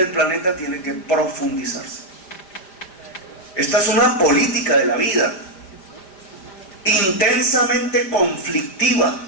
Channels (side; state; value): right; late; 5.1 ms